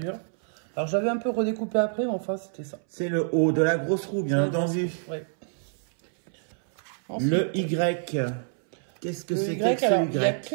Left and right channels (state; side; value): silent; left; 60 dB below the other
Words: Alors, j'avais un peu redécoupé après, mais enfin, c'était ça. C'est le O de la grosse roue, bien entendu. Ouais. Ensuite, le Y. Qu'est-ce que c'est que ce Y?